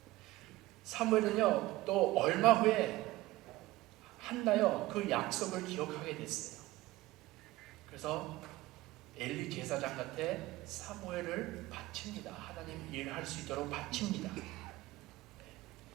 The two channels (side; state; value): left; quieter; 18.1 dB